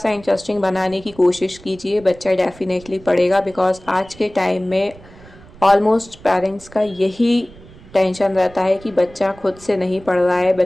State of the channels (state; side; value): noise; right; rumble, 22 dB below the sound